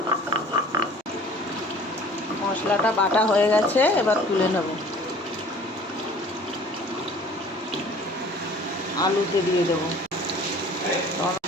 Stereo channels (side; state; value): both; normal; correlation 0.49